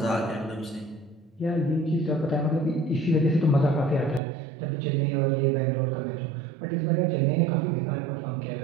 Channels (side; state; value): left; drops out; at 4.2 s